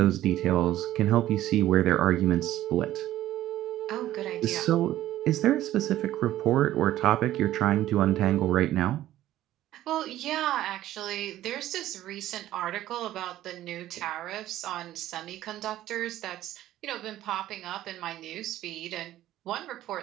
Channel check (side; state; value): left; quieter; 13.9 dB